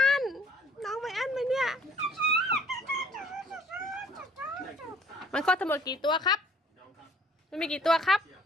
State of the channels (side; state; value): both; normal; correlation 0.56